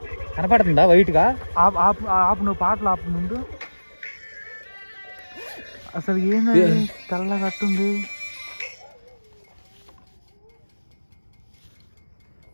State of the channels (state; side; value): inverted; both; correlation -1.00